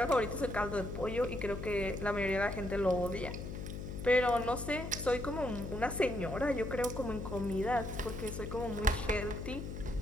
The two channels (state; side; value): noise; left; hum, 7 dB below the sound